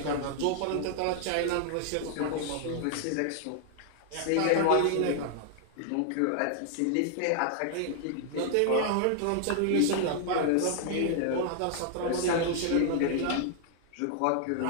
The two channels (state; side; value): different; both; correlation 0.00